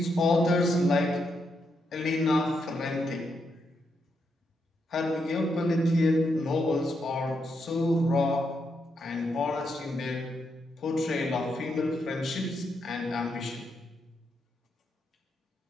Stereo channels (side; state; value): both; normal; correlation 0.81